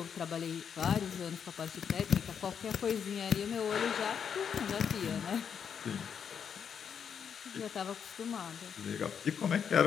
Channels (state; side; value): quieter; right; 7.4 dB